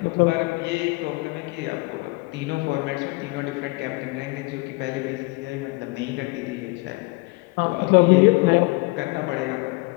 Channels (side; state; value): right; quieter; 25.6 dB